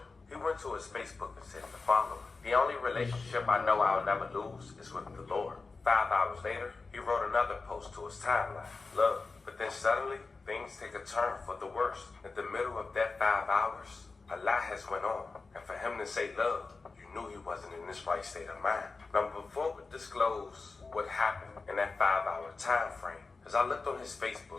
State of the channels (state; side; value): quieter; right; 4.1 dB